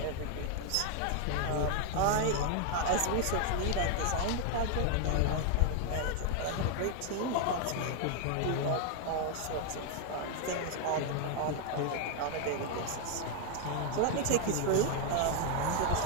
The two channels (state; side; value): different; both; correlation 0.00